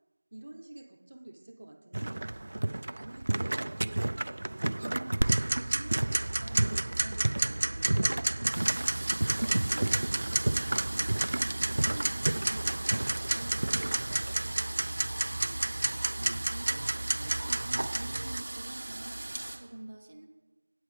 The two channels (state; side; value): inverted; both; correlation -1.00